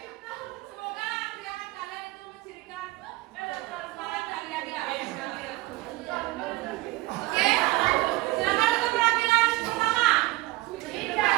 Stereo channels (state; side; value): quieter; left; 20.1 dB